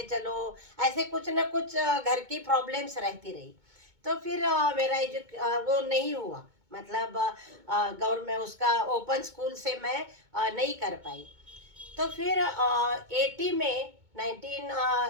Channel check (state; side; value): late; left; 2.2 ms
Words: चलो, ऐसे कुछ ना कुछ घर की प्रॉब्लम्स रहती रही। तो फिर मेरा वो नहीं हुआ, मतलब गवर्नमेंट उसका ओपन स्कूल से मैं नहीं कर पाई। तो फिर 80 में